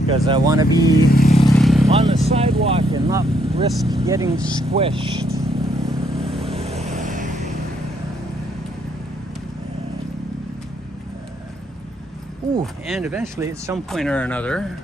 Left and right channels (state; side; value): normal; both; correlation 0.72